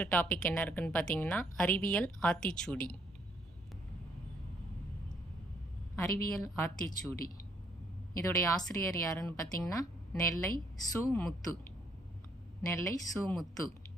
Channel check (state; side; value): normal; both; correlation 0.69